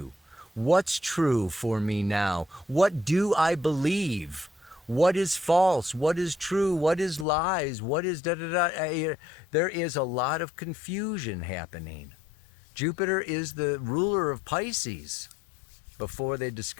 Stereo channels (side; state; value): right; drops out; at 7.2 s